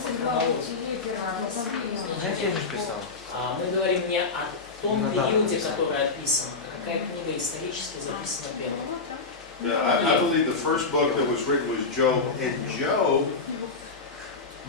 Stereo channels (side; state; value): right; quieter; 4.1 dB